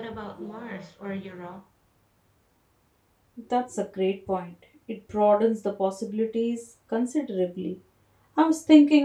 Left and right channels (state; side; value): identical; both; correlation 1.00